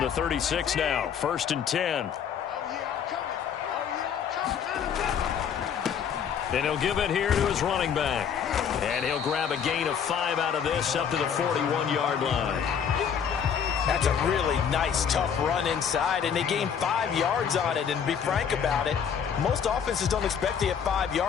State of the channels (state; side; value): quieter; right; 7.7 dB